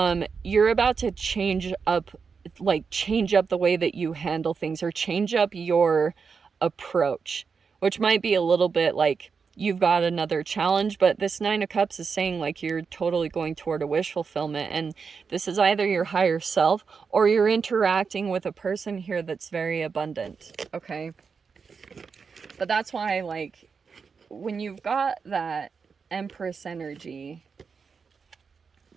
you're about to change up the way that you handle things, or change up your approach, which might be a little bit like you've got another challenge. But this Nine of Cups is saying like you're totally going toward a wish fulfillment, and this is either your higher self, or you're interacting with a person here that's very abundant, okay? But that's why, like, when you've got that Empress energy,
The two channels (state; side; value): quieter; left; 5.6 dB